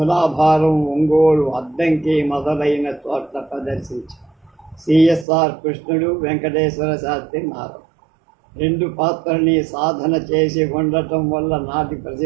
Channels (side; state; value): left; drops out; at 5.2 s